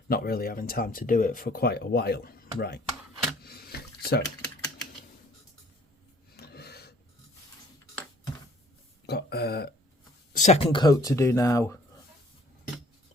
not really having time to do it for quite a while. Right. So got a second coat to do now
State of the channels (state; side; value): normal; both; correlation 0.56